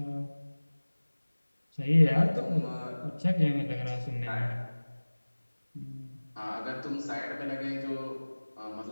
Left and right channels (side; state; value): both; inverted; correlation -1.00